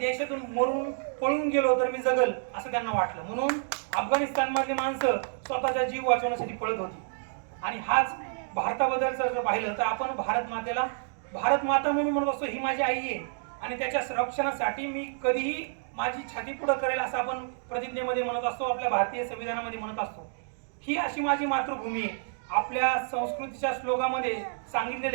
मरून पळून गेलो तर मी जगल असं त्यांना वाटलं. म्हणून अफगाणिस्तानमधली माणसं स्वतःचा जीव वाचवण्यासाठी पळत होती. आणि हाच भारताबद्दलचं जर पाहिलं तर आपण भारत मातेला भारत माता म्हणून म्हणत असतो, ही माझी आई आहे आणि त्याच्या संरक्षणासाठी मी कधीही माझी छाती पुढं करेल असं आपण प्रतिज्ञेमध्ये म्हणत असतो, आपल्या भारतीय संविधानामध्ये म्हणत असतो. ही अशी माझी मातृभूमी आहे. आपल्या संस्कृतीच्या श्लोकामध्ये सांगितलेलं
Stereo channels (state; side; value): silent; left; digital silence